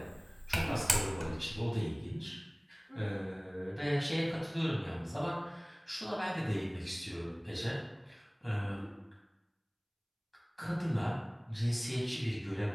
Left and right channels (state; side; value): identical; both; correlation 1.00